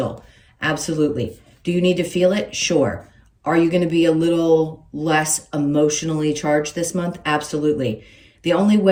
Absolutely. Do you need to feel it? Sure. Are you going to be a little less emotionally charged this month? Absolutely. The only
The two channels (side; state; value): both; identical; correlation 1.00